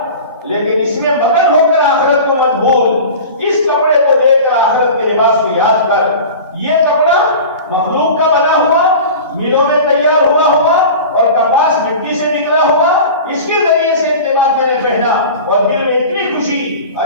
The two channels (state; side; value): inverted; both; correlation -0.36